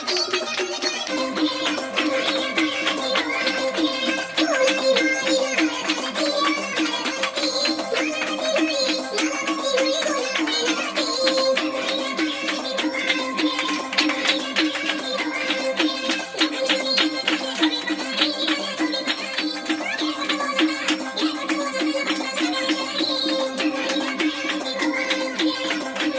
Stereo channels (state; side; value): identical; both; correlation 1.00